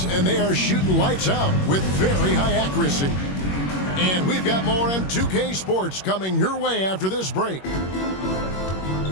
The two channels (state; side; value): late; right; 21 ms